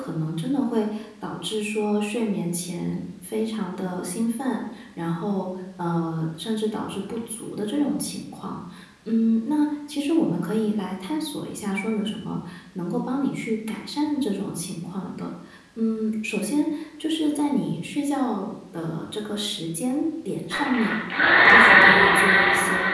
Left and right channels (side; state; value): both; identical; correlation 1.00